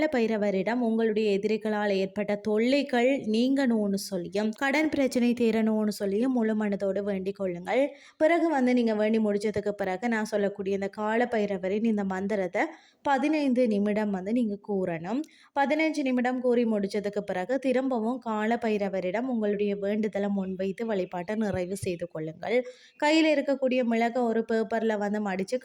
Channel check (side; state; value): both; identical; correlation 1.00